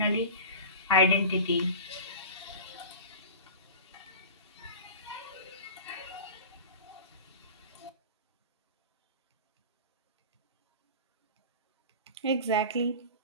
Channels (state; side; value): inverted; both; correlation -0.34